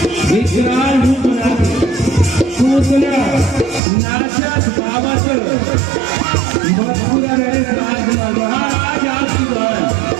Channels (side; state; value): left; drops out; at 3.8 s